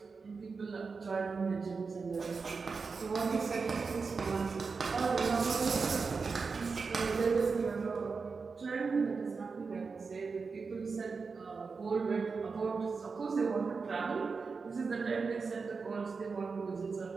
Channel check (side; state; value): left; quieter; 4.8 dB